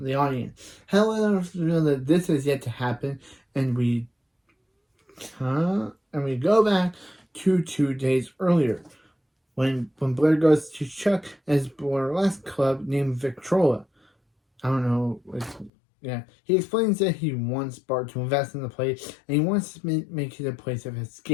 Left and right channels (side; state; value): right; drops out; at 15.7 s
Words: the audience. However, we know that this is yet to happen, and we go back to 2 days earlier when Blair goes to Chuck at his burlesque club named Victrola. I don't know. He explains that he wants Bart to invest in the place, and he wants to make it a place of